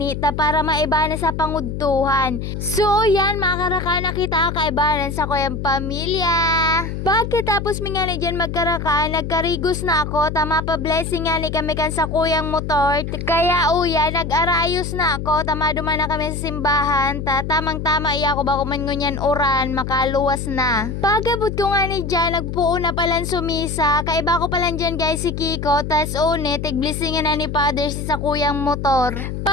para maiba na sa pangudtuhan. So yan, makaraka na kita kaibanan sa kuyang pamilya. Pagkatapos mi nga ni dyan magkaraka, nagkarigos na ako, tama pa blessing nga ni kami kan sa kuyang motor. Kaya uya, nag-arayos na ako, tama duman na kami sa simbahan. Tamang-tama iya ko ba kuman ngunyan oran, makaluwas na. Pagabot ko nga ni dyan, nagpuo na palang sumisa. Kaiba ko palang dyan guys si Kiko, tas une, tigblisingan na ni Father si sa kuyang motor.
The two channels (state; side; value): noise; left; hum, 5 dB below the sound